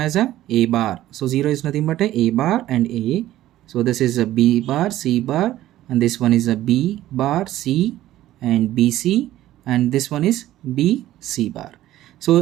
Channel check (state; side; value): quieter; left; 14.2 dB